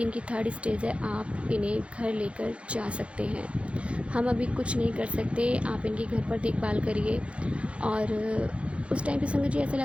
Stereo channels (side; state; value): left; late; 0.061 ms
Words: इनकी 3rd स्टेज है, आप इन्हें घर लेकर जा सकते हैं। हम अभी कुछ नहीं कर सकते, आप इनकी घर पर देखभाल करिए। और उस टाइम पे संगत जी ऐसा